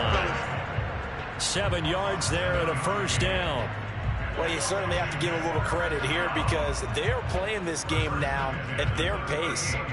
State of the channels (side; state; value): both; identical; correlation 1.00